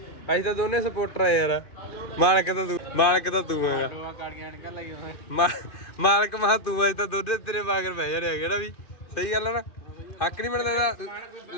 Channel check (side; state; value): right; late; 2.5 ms